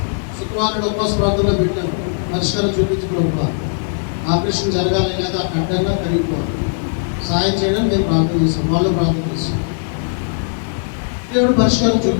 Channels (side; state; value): right; silent; digital silence